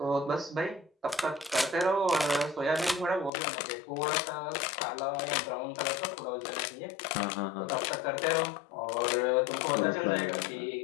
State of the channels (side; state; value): right; drops out; at 3.3 s